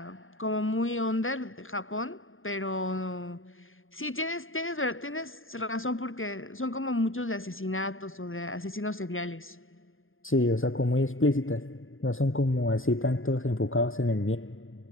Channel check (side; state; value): right; late; 0.59 ms